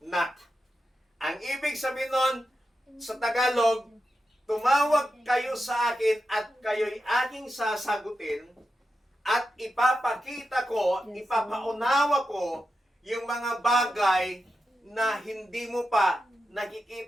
Ang ibig sabihin nun, sa Tagalog, tumawag kayo sa akin at kayo'y aking sasagutin at ipapakita ko, ipapaunawa ko yung mga bagay na hindi mo pa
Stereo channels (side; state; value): both; normal; correlation 0.89